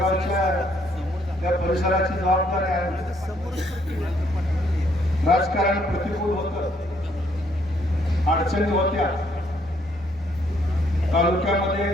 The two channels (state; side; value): noise; right; rumble, 27 dB below the sound